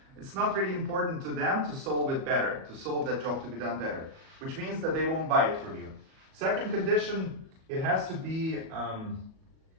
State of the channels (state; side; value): late; left; 37 ms